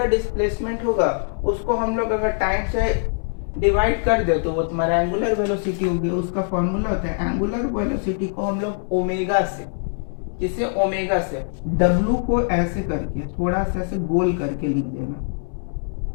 डिस्प्लेसमेंट होगा उसको हम लोग अगर टाइम से डिवाइड कर दे तो वो तुम्हारा एंगुलर वेलोसिटी होगी। उसका फॉर्मूला होता है एंगुलर वेलोसिटी को हम लोग ओमेगा से, किसे? ओमेगा से W को ऐसे करके थोड़ा सा ऐसे गोल करके लिख देना,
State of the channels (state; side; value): silent; right; digital silence